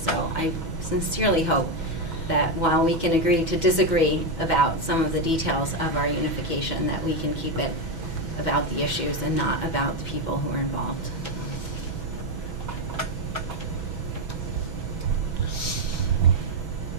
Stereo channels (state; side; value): late; left; 6.1 ms